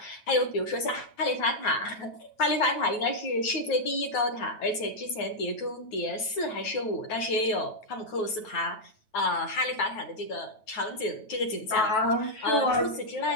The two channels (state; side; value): late; right; 9.2 ms